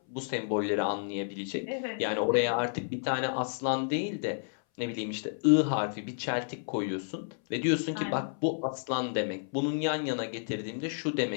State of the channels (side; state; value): right; silent; 57 dB below the other